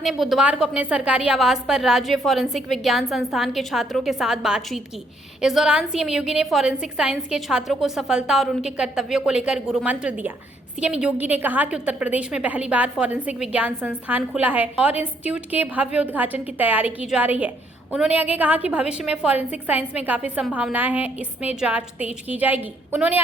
ने बुधवार को अपने सरकारी आवास पर राज्य फॉरेंसिक विज्ञान संस्थान के छात्रों के साथ बातचीत की। इस दौरान सीएम योगी ने फॉरेंसिक साइंस के छात्रों को सफलता और उनके कर्तव्यों को लेकर गुरु मंत्र दिया। सीएम योगी ने कहा कि उत्तर प्रदेश में पहली बार फॉरेंसिक विज्ञान संस्थान खुला है और इंस्टीट्यूट के भव्य उद्घाटन की तैयारी की जा रही है। उन्होंने आगे कहा कि भविष्य में फॉरेंसिक साइंस में काफी संभावनाएं हैं, इसमें जांच तेज की जाएगी। उन्होंने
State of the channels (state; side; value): normal; both; correlation 0.70